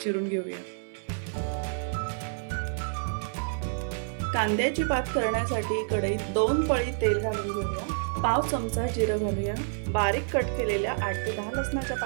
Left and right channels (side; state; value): left; silent; 57 dB below the other